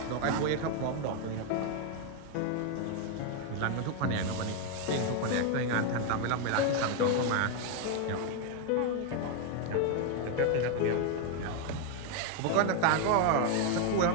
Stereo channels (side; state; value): both; different; correlation 0.01